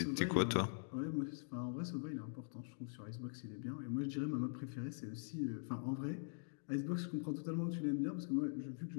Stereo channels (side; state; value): right; silent; digital silence